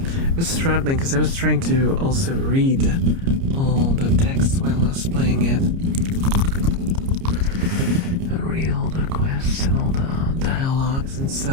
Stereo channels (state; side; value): late; left; 30 ms